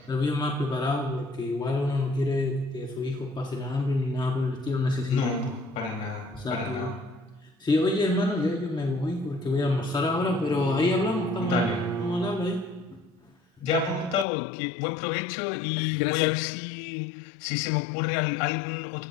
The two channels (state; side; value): drops out; right; at 14.2 s